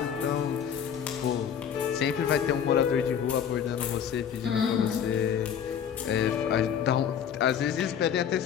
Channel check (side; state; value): right; quieter; 8.3 dB